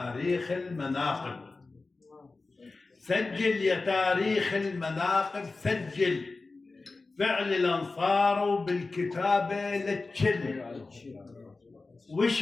المناقب. سجل يا تاريخ المناقب. سجل فعل الأنصار وبالكتابة لتشل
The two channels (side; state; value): right; quieter; 3.6 dB